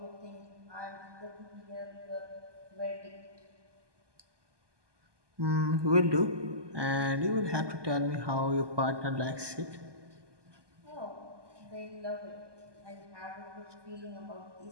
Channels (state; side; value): late; left; 1.2 ms